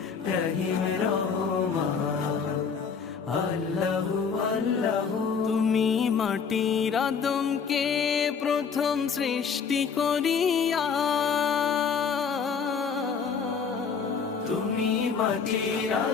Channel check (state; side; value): quieter; right; 6.1 dB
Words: রহিম রহমান। আল্লাহু আল্লাহু তুমি মাটির আদমকে প্রথম সৃষ্টি করিয়া, তুমি মাটির